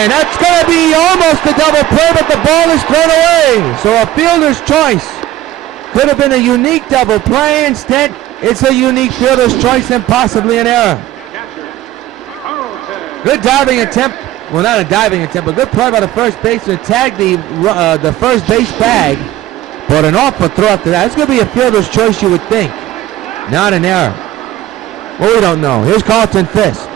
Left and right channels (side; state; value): left; quieter; 14.3 dB